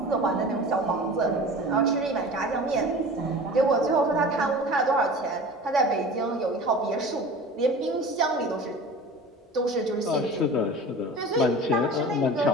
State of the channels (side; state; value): both; normal; correlation 0.38